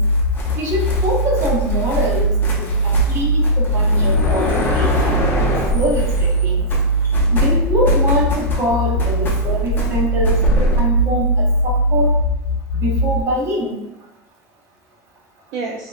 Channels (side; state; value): both; normal; correlation -0.18